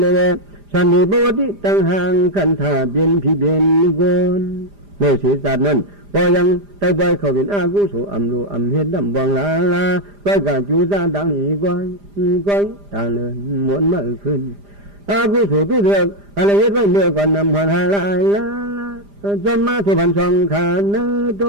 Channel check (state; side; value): late; left; 5.0 ms